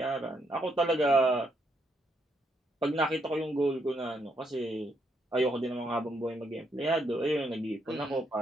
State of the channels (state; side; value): normal; both; correlation 0.76